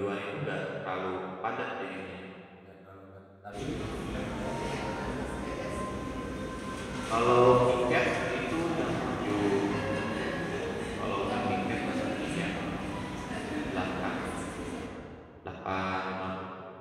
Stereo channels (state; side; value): identical; both; correlation 1.00